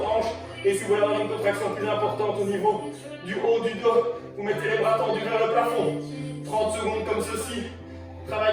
hanches. Et si vous voulez avoir une contraction plus importante au niveau du haut du dos, vous mettez les bras tendus vers le plafond. 30 secondes comme ceci.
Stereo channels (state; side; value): identical; both; correlation 1.00